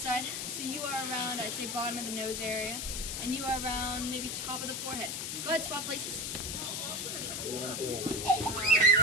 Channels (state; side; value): noise; left; hiss, 3 dB below the sound